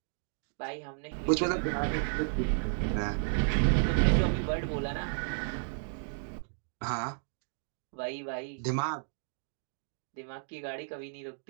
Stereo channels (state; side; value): silent; left; digital silence